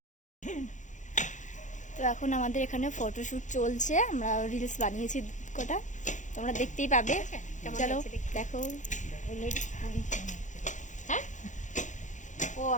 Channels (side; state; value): right; late; 0.36 ms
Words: তো এখন আমাদের এখানে ফটোশুট চলছে, আমরা রিলস বানিয়েছি কটা, তোমরা দেখতেই পাবে। চলো দেখো। হ্যাঁ ও